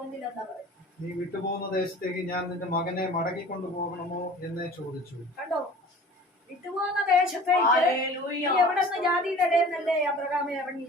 എന്താ പറയുക? നീ വിട്ടുപോകുന്ന ദേശത്തേക്ക് ഞാൻ നിന്റെ മകനെ മടക്കിക്കൊണ്ടു പോകണമോ എന്ന് ചോദിച്ചു. കണ്ടോ, വിട്ടുപോകുന്ന ദേശത്തേക്ക് എവിടെ നിന്ന് ജാതിയുടെ ഇടയെന്നല്ലേ അബ്രഹാമെ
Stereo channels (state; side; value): normal; both; correlation 0.44